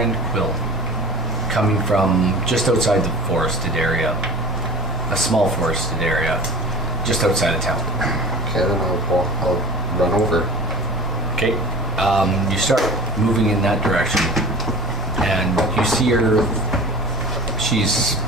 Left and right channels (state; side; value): normal; both; correlation 0.38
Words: Quill coming from just outside the forested area, a small forested area, just outside of town. Okay, then I'll run over. Okay, you start moving in that direction, and you see her. She's